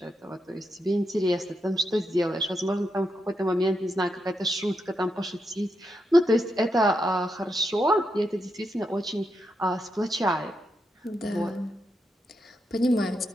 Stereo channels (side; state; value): both; normal; correlation 0.83